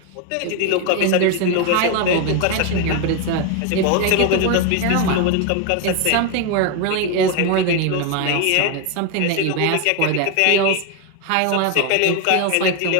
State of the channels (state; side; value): different; both; correlation 0.01